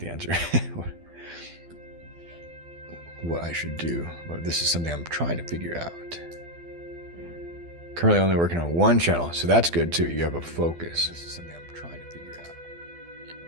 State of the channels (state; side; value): late; left; 12 ms